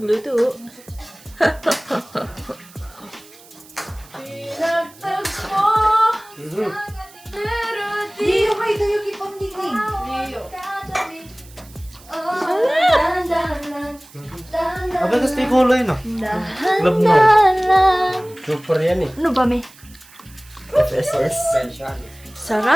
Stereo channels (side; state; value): right; noise; hiss, 23 dB below the sound